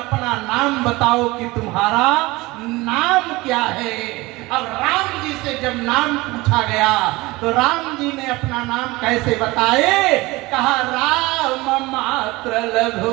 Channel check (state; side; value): quieter; left; 21.3 dB